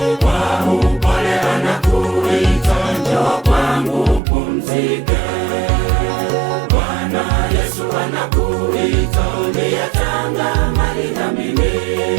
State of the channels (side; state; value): left; drops out; at 4.2 s